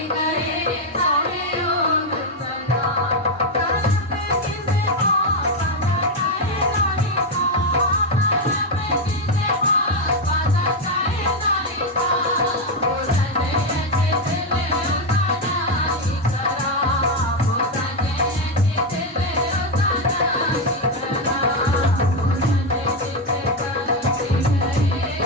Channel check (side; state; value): both; normal; correlation 0.06